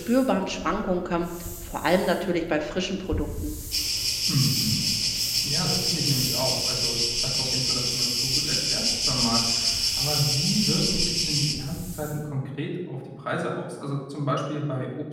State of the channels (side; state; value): both; identical; correlation 1.00